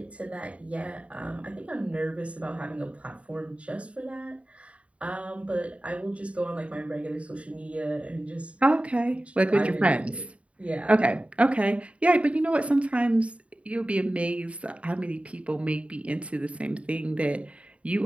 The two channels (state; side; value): late; left; 0.063 ms